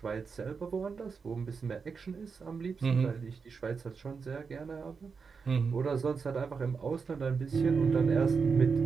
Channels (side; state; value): left; quieter; 5.4 dB